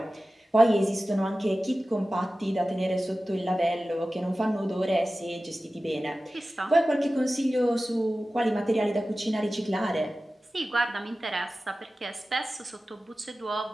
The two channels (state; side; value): normal; both; correlation 0.95